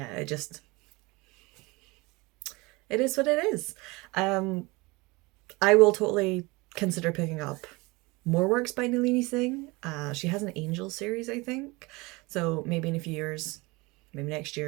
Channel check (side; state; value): left; quieter; 24.4 dB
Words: it is what it is. I will totally consider picking up more works by Nalini Singh. She has an Angel series, I think. So maybe in a few years, maybe next